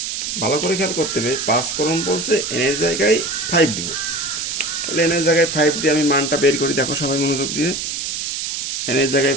ভালো করে খেয়াল করতে হবে, 5 ক্রম বলছে n এর জায়গায় 5 দিব। তাহলে n এর জায়গায় 5 দিয়ে আমি মানটা বের করি। দেখো সবাই মনোযোগ দিয়ে, n এর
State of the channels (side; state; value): right; noise; hiss, 3 dB below the sound